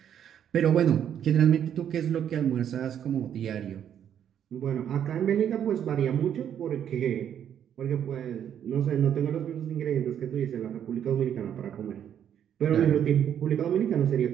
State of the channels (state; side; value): quieter; left; 9.4 dB